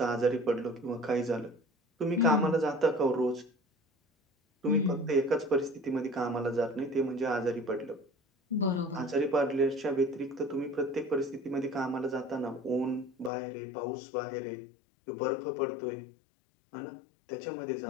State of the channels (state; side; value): drops out; right; at 13.3 s